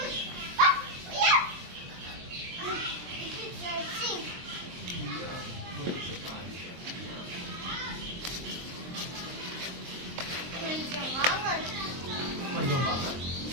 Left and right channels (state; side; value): late; left; 23 ms